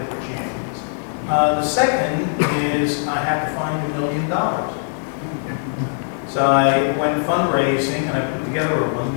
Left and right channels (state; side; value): silent; right; digital silence